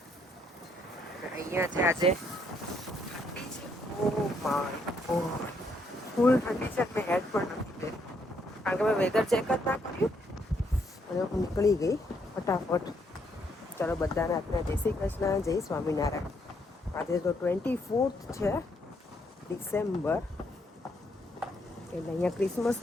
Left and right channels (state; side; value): normal; both; correlation 0.72